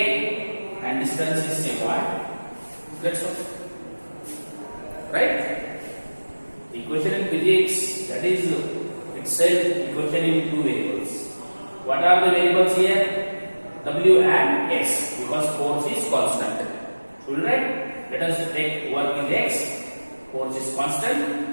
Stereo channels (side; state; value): both; inverted; correlation -1.00